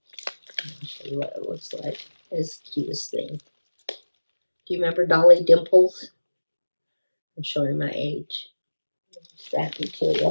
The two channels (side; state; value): both; inverted; correlation -1.00